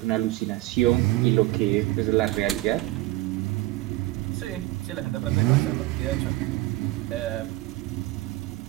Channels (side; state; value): left; quieter; 18.0 dB